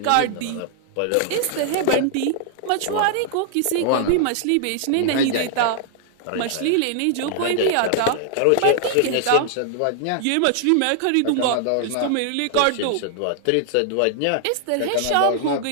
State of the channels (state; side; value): different; both; correlation 0.00